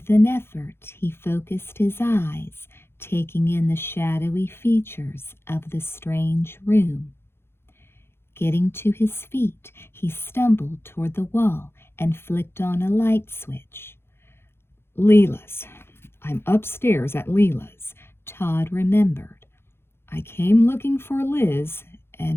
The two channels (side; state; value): right; late; 0.12 ms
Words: an effort, he focused his eyes, taking in the shadowy features of the strange room. Getting to his feet, he stumbled toward the wall and flicked on a light switch. Leela's. I'm upstairs at Leela's, Todd remembered. I came looking for Liz,